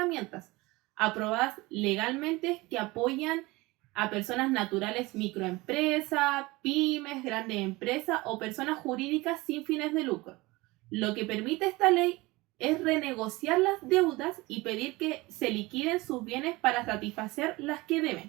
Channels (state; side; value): quieter; left; 21.9 dB